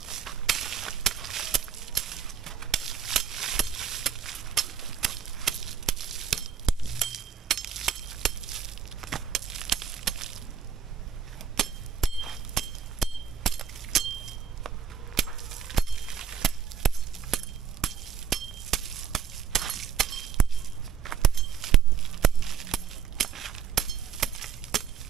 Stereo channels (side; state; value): left; quieter; 7.4 dB